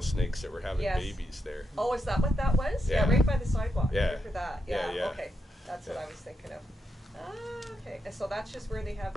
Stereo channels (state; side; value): normal; both; correlation 0.83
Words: snakes that were having Yes. babies there. Oh, is that what that was? Yeah. Right by the sidewalk. Yeah. Right for that. Yeah, yeah. Okay. That's what Yeah. I was thinking of. Ah, okay. And so that's just where they have